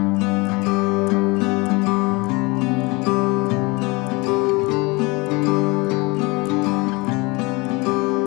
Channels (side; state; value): right; quieter; 25.8 dB